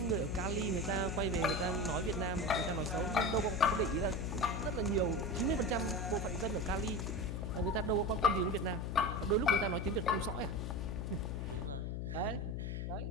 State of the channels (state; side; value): noise; left; hum, 3 dB below the sound